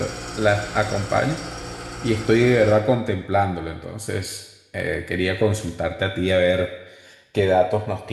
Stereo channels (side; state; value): both; identical; correlation 1.00